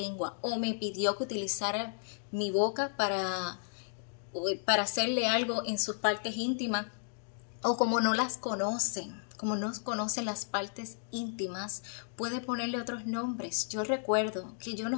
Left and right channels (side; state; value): right; silent; digital silence